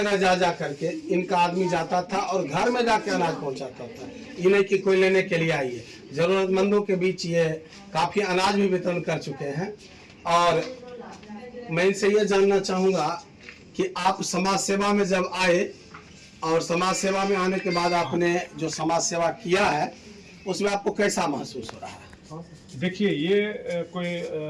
जा करके इनका आदमी जाता था और घर में जाके अनाज पहुंचाता था। ये नहीं कि कोई लेने के लिए आई है, जरूरतमंदों के बीच ये काफ़ी अनाज भी वितरण कर चुके हैं। और मैं इनसे ये जानना चाहूँगा कि आप समाज सेवा में जब आए और समाज सेवा में आने के बाद आपने जो समाज सेवा किया है, उसमें आपको कैसा महसूस हो रहा है? देखिए, ये कोई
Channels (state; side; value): identical; both; correlation 1.00